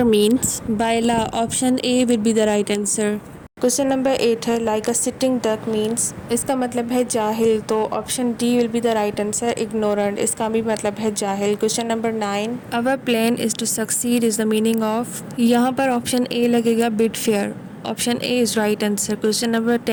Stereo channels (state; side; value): identical; both; correlation 1.00